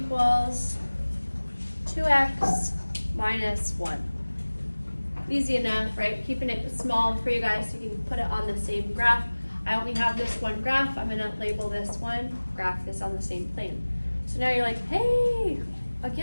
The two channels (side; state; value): both; inverted; correlation -1.00